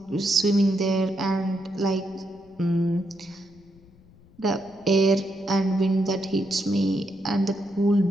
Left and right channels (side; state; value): left; noise; rumble, 27 dB below the sound